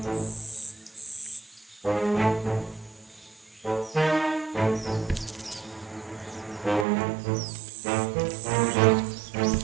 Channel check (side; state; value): left; drops out; at 6.9 s